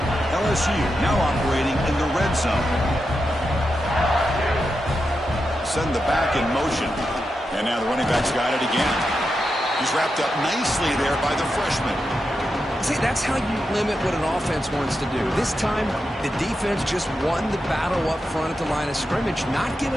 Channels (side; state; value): both; normal; correlation 0.88